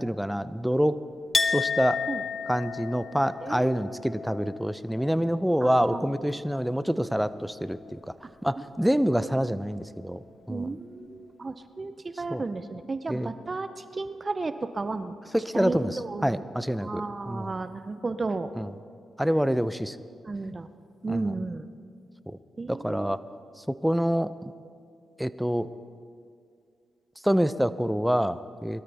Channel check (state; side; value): normal; both; correlation 0.97